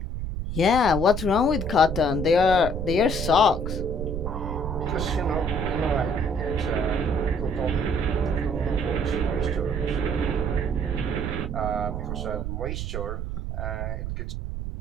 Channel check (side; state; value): right; noise; rumble, 4 dB below the sound